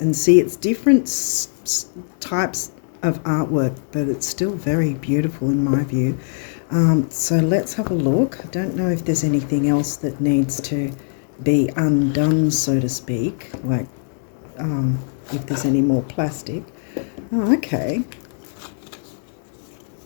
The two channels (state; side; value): silent; right; 59 dB below the other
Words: And see, it's different types of artwork, but it's still very beautiful in my view. So let's have a look. I don't know if there's anything else that needs to be undone, so to speak, like if there's any more plastic. Oh, okay.